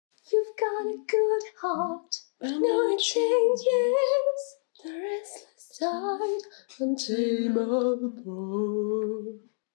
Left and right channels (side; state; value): right; silent; digital silence